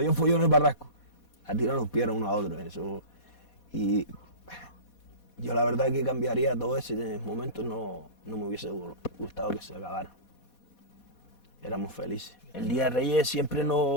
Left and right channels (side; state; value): right; late; 4.2 ms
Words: un follón en el barranco, a tirar los pies unos a otros. Eso. Y yo la verdad que cambiaría todo ese momento, no me hubiese gustado que se acabara. Éramos felices. El Día de Reyes siempre